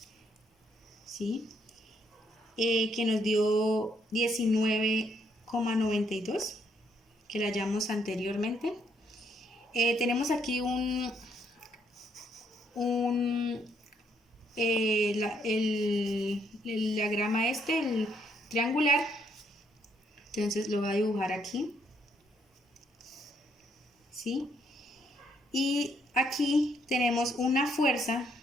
¿sí? Que nos dio 19,92, que la hallamos anteriormente. Tenemos aquí el diagrama el triangular. Entonces lo voy a dibujar aquí, ¿sí? Y aquí tenemos una fuerza,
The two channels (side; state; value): both; normal; correlation 0.72